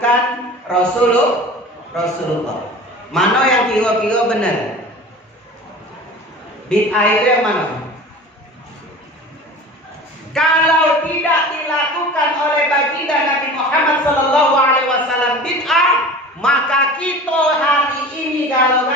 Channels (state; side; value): normal; both; correlation 0.38